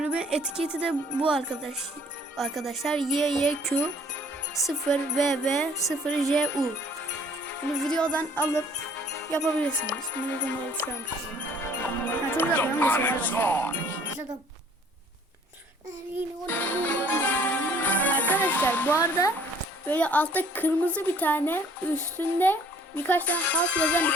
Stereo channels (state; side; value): normal; both; correlation 0.57